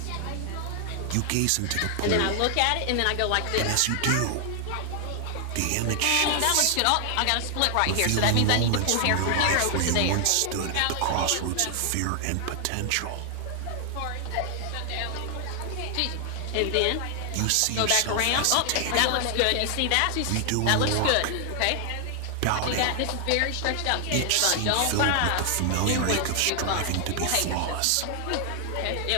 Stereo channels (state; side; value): different; both; correlation 0.00